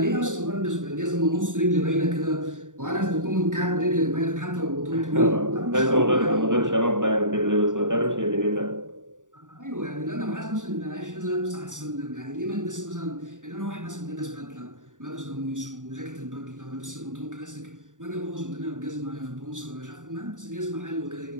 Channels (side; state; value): left; late; 0.87 ms